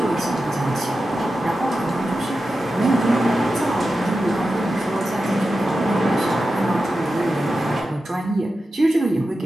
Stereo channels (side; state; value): both; normal; correlation 0.92